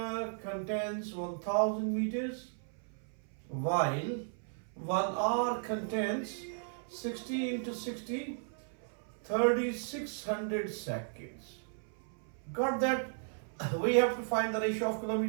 contains 1000 meters, while 1 hour contains 60 into 60, 3600 seconds. Got that? We have to find the ratio of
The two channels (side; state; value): left; silent; 54 dB below the other